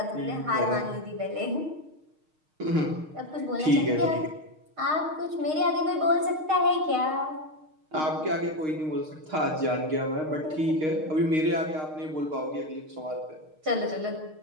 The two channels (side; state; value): left; late; 6.5 ms